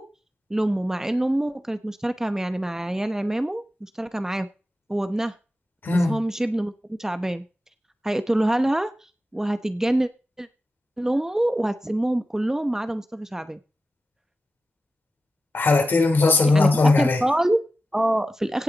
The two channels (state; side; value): normal; both; correlation 0.92